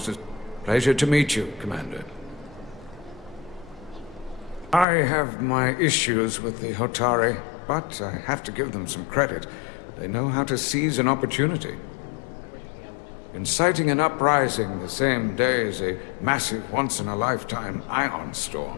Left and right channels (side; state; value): right; drops out; at 4.9 s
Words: Pleasure to meet you, Commander. I have my issues with the Hotari, but I have to give them some credit. They know how to seize an opportunity. Inciting an uprising the same day as a massive, once-in-a-lifetime ion